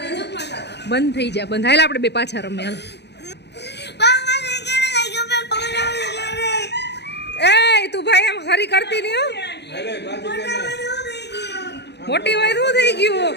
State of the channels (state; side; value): late; right; 0.49 ms